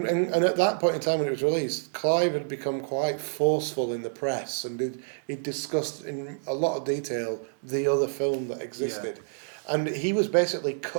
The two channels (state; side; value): silent; left; 60 dB below the other